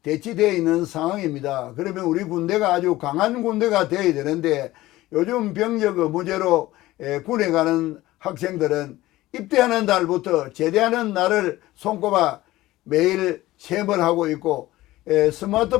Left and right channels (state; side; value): quieter; right; 17.0 dB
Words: 대치되어 있는 상황입니다. 그러면 우리 군대가 아주 강한 군대가 되어야 되는데 요즘 병력 의무제로 군에 가는 학생들은 입대하는 날부터 제대하는 날을 손꼽아 매일 시험을 하고 있고